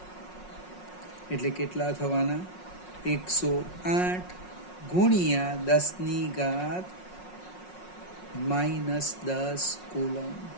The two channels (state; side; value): late; right; 5.5 ms